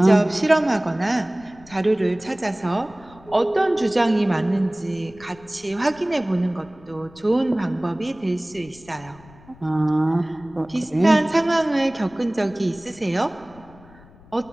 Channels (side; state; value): left; noise; rumble, 24 dB below the sound